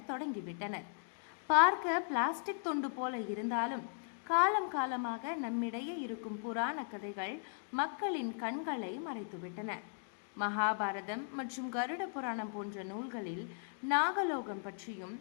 தொடங்கிவிட்டனர். பார்க்க பிளாஸ்டிக் துண்டு போல இருந்தாலும் காலம் காலமாக நம்மிடையே இருக்கும் புராண கதைகள் மக்களின் கண்களை மறைத்துவிட்டன. மகாபாரதம் மற்றும் கருட புராணம் போன்ற நூல்களில் நாகலோகம் பற்றியும்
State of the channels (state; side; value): silent; right; digital silence